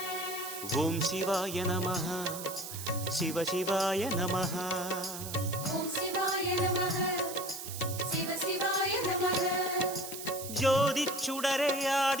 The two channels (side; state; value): right; noise; hiss, 9 dB below the sound